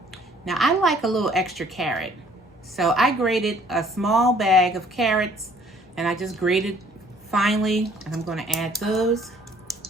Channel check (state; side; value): normal; both; correlation 0.58